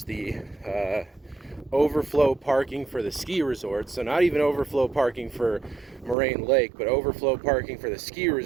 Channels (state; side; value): drops out; left; at 6.2 s